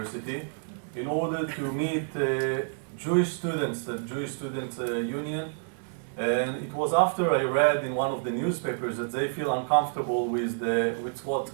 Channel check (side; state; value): left; silent; digital silence